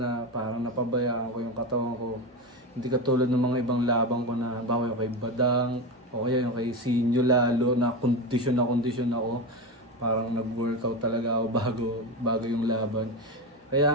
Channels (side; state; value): both; normal; correlation 0.19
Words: parang napabayaan ko yung katawan ko. Hindi katulad ng mga ibang labang ko na bawa yung kay Badang o kaya yung kay Sinyo lalo na kondisyon ako. Parang nag-workout talaga ako bago yung laban. Kaya